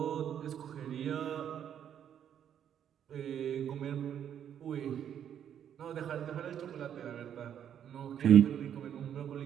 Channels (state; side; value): quieter; left; 9.3 dB